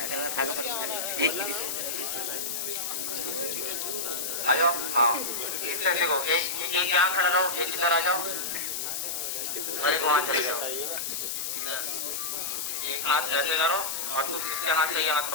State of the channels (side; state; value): left; noise; hiss, 3 dB below the sound